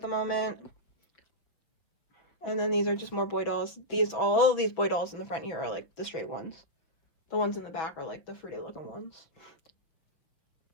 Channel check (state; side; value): late; right; 6.4 ms